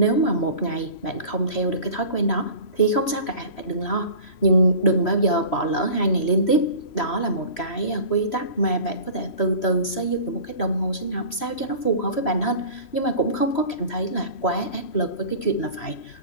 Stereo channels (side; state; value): right; late; 3.0 ms